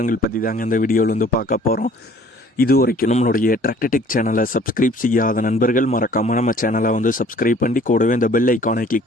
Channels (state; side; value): normal; both; correlation 0.54